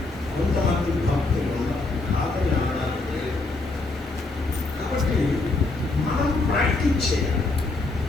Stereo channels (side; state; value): right; quieter; 3.3 dB